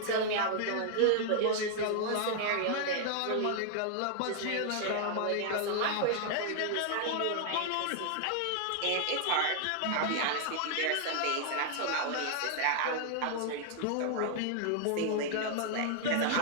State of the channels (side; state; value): both; different; correlation 0.00